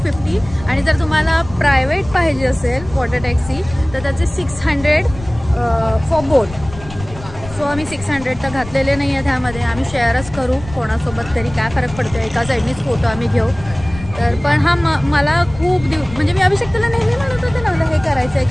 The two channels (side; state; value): left; noise; rumble, 14 dB below the sound